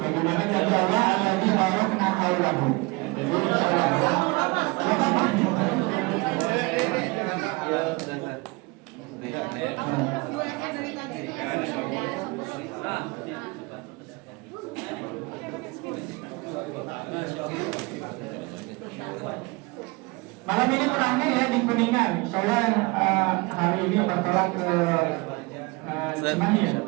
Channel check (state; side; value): quieter; left; 25.7 dB